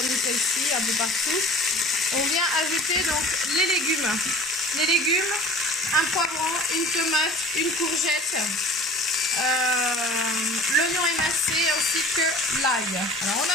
celle-ci, un peu partout, on vient ajouter donc les légumes. Les légumes, un poivron, une tomate, une courgette, l'oignon émincé ainsi que l'ail. Alors on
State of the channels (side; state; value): both; normal; correlation 0.44